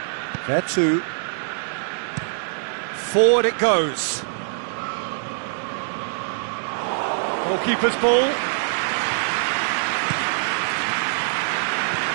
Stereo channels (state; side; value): silent; left; digital silence